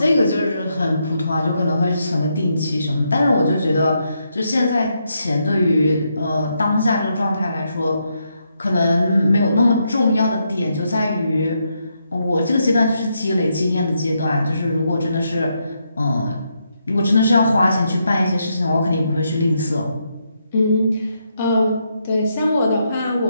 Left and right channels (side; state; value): both; inverted; correlation -0.80